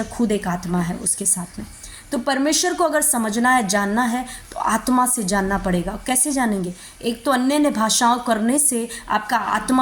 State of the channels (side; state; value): both; identical; correlation 1.00